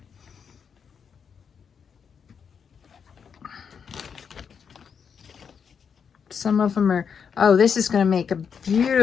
Some of them are, oh, this is going to make a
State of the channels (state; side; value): quieter; right; 6.8 dB